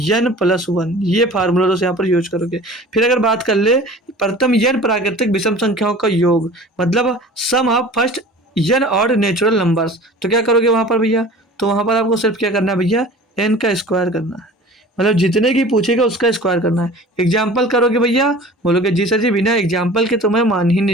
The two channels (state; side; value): normal; both; correlation 0.42